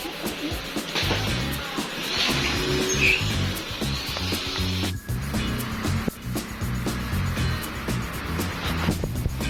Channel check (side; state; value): both; identical; correlation 1.00